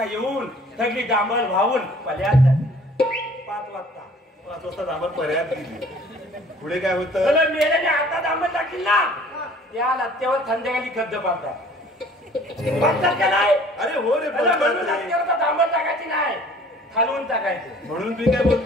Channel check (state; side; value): normal; both; correlation 0.52